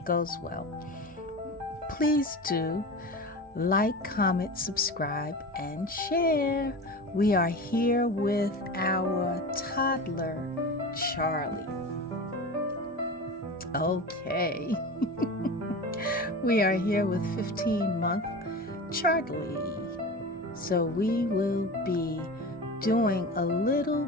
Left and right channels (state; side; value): normal; both; correlation 0.30